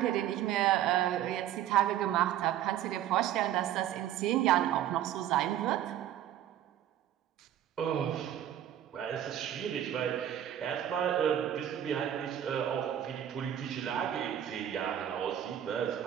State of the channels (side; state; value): left; quieter; 11.2 dB